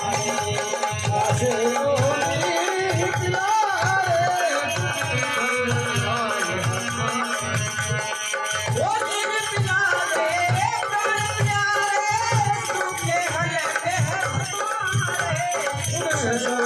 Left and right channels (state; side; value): identical; both; correlation 1.00